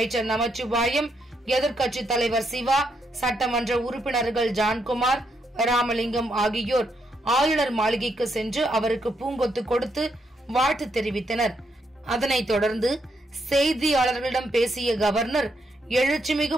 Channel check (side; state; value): both; normal; correlation 0.78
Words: நமச்சிவாயம், எதிர்க்கட்சித் தலைவர் சிவா, சட்டமன்ற உறுப்பினர்கள் ஜான்குமார், ராமலிங்கம் ஆகியோர் ஆளுநர் மாளிகைக்கு சென்று அவருக்கு பூங்கொத்து கொடுத்து வாழ்த்து தெரிவித்தனர். அதனைத் தொடர்ந்து செய்தியாளர்களிடம் பேசிய கவர்னர்,